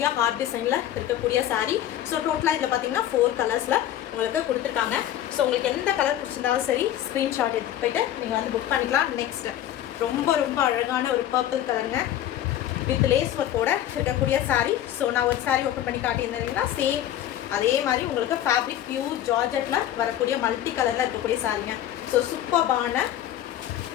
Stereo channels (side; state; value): right; quieter; 11.9 dB